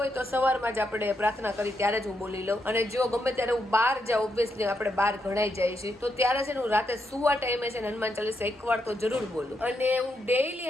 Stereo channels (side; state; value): both; normal; correlation 0.81